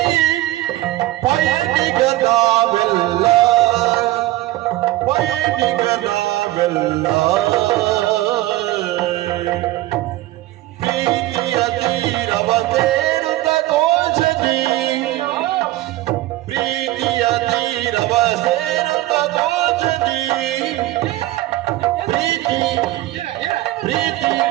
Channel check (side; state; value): left; quieter; 16.9 dB